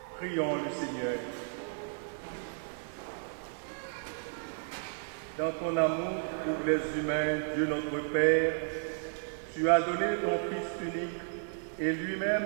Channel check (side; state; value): left; silent; digital silence